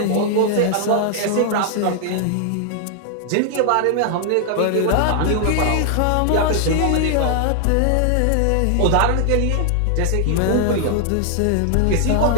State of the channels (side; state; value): both; different; correlation 0.00